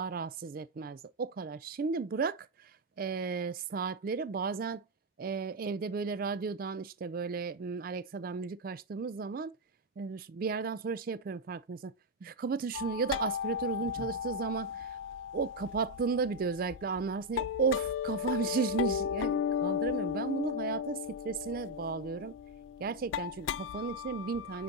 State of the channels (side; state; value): both; normal; correlation 0.03